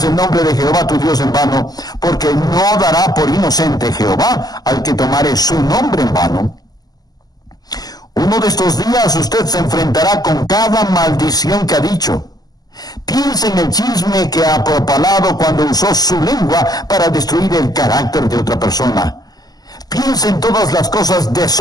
el nombre de Jehová tu Dios en vano, porque no dará por inocente Jehová al que tomare su nombre en vano. Uno de estos días usted se enfrentará con cada maldición que ha dicho. Piense en el chisme que ha propalado cuando usó su lengua para destruir el carácter de otra persona. Piense en todas las cosas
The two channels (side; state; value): right; late; 0.19 ms